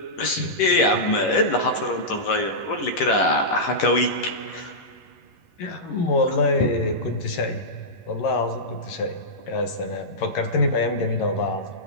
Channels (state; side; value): late; right; 11 ms